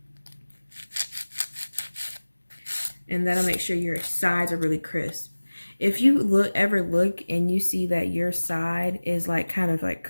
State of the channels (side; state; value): both; inverted; correlation -1.00